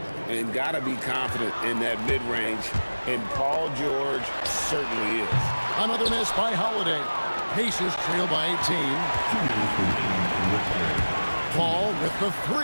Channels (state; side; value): inverted; both; correlation -1.00